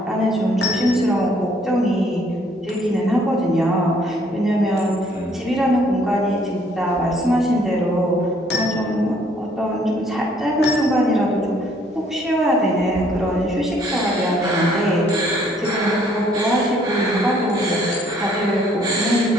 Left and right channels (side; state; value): both; normal; correlation 0.63